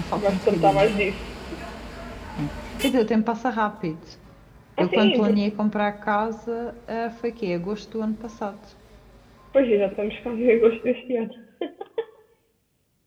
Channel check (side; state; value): both; identical; correlation 1.00